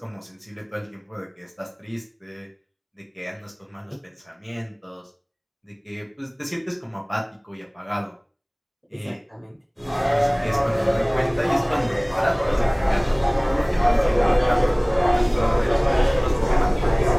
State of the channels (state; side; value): identical; both; correlation 1.00